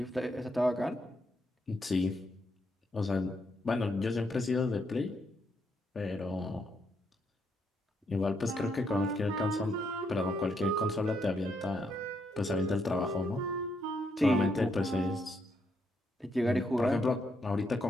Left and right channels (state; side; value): normal; both; correlation 0.77